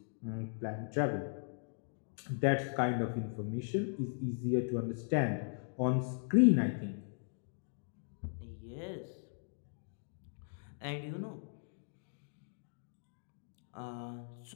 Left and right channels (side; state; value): right; silent; digital silence